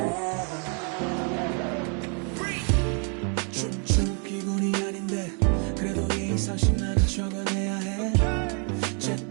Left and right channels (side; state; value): left; quieter; 38.8 dB